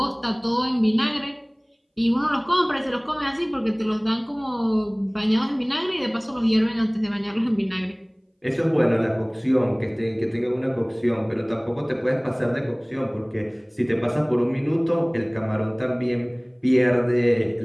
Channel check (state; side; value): identical; both; correlation 1.00